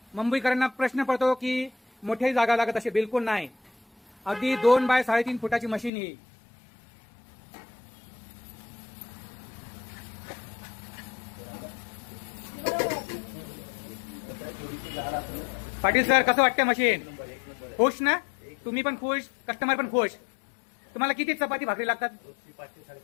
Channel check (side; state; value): right; drops out; at 5.9 s